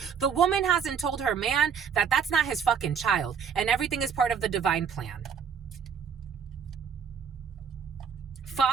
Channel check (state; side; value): quieter; left; 6.9 dB